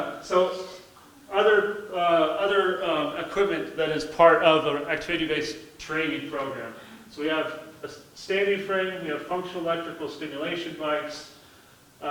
So other equipment that is part of an activity-based training program. So we have a standing frame, we have functional electrical stimulation bikes,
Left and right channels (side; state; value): both; identical; correlation 1.00